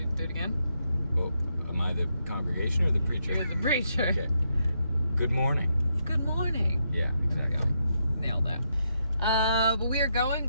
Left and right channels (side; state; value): both; inverted; correlation -0.80